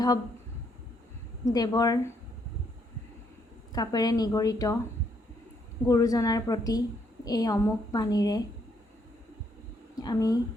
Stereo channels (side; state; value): both; normal; correlation 0.72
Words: দেৱৰ কাপেৰে নিগৰিত গুৰুজনাৰ প্ৰতি এই অমোঘ বাণীৰে আমি